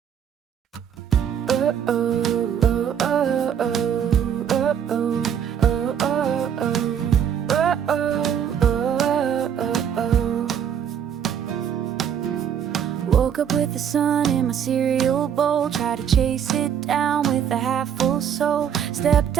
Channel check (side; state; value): left; quieter; 8.5 dB